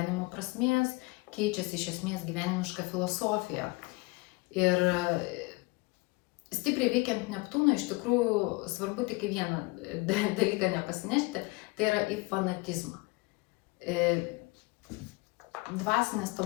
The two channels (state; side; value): quieter; right; 25.2 dB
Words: prasmės, keičiasi iš esmės gyvenimiška filosofija. Ir stipriai veikiant Neptūną iš tikrųjų svarbu tik vieną dalyką nepasinešti, tai yra į fanatizmą. Dvasinės